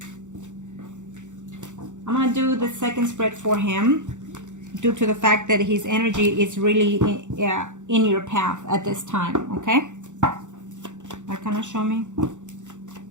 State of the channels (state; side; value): late; left; 0.85 ms